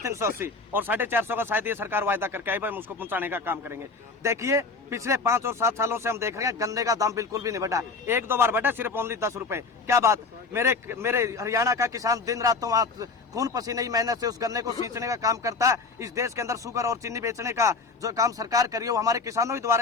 और 450 का शायद ये सरकार वायदा करके आई, भाई हम उसको पहुंचाने का काम करेंगे। देखिए, पिछले 5 और 7 सालों से हम देख रहे हैं गन्ने का दाम बिल्कुल भी नहीं बढ़ा, 1-2 बार बढ़ा, सिर्फ ओनली 10 रुपए। क्या बात! मेरे हरियाणा का किसान दिन रात तो वहाँ खून पसीने की मेहनत से उस गन्ने को सींचने का काम करता है। इस देश के अंदर शुगर और चीनी बेचने का जो काम सरकार करी है वो हमारे किसानों के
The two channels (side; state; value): right; quieter; 4.2 dB